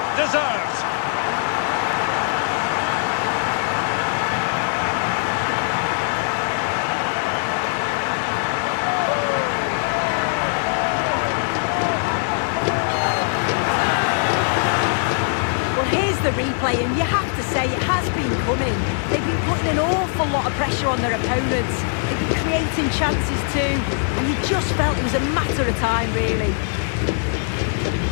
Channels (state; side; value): silent; right; 65 dB below the other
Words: deserved. The replay, and you have to say it has been coming. They've been putting an awful lot of pressure on their opponents. They've been creating chances too, and you just felt it was a matter of time, really.